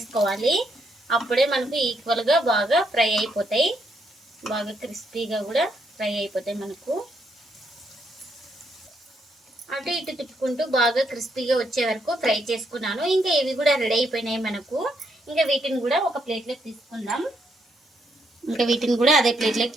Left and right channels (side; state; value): both; normal; correlation 0.76